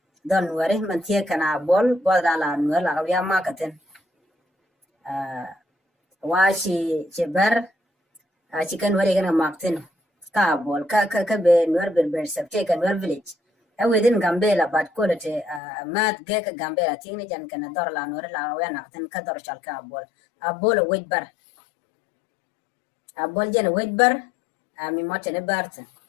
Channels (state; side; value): drops out; right; at 15.6 s